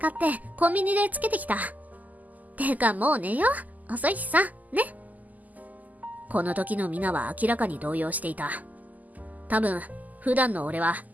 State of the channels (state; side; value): late; left; 0.080 ms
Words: ってコンビニでつけてきた。てかもう寝よう。遅いしさ、ね。この時のミナは明らかに動揺していた。多分、普段の俺は